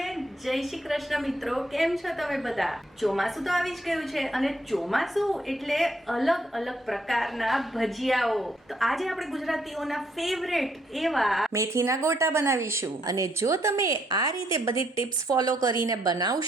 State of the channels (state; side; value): normal; both; correlation 0.72